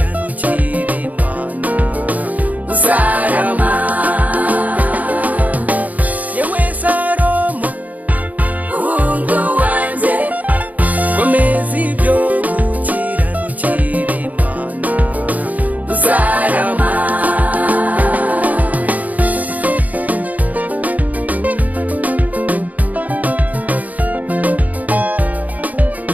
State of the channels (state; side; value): late; left; 0.075 ms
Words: Imana uzarama yewe Salomo hungu wanjye komeza ibyo gukiranukira Imana uzarama